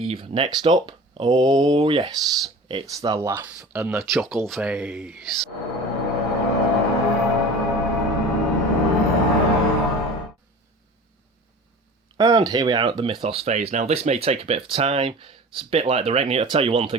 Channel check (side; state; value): both; normal; correlation 0.38